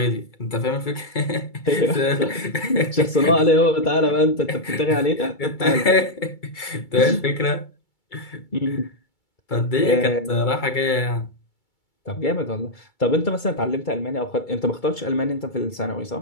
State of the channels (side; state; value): right; late; 2.3 ms